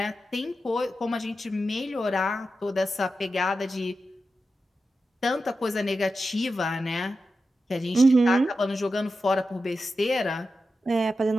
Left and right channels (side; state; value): both; normal; correlation 0.90